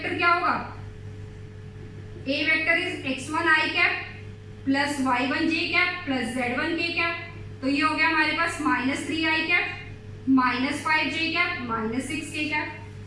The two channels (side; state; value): both; identical; correlation 1.00